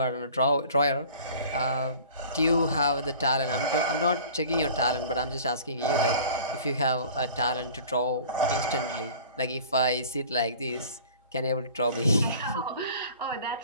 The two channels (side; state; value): both; inverted; correlation -0.45